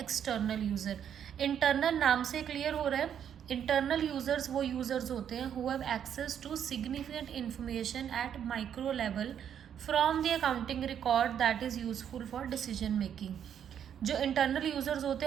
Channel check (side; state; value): left; quieter; 8.9 dB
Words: यूज़र। इंटरनल नाम से क्लियर हो रहा है। इंटरनल यूजर्स वो यूजर्स होते हैं who have access to significant information at micro level from the accounting record that is useful for decision making. जो इंटरनल यूजर्स होते